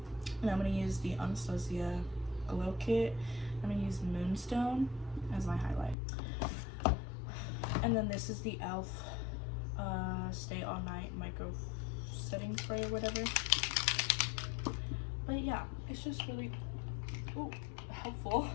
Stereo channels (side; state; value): right; drops out; at 6.0 s